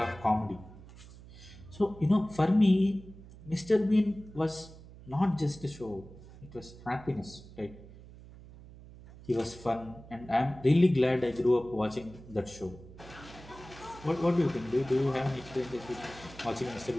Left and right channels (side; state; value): right; noise; hum, 18 dB below the sound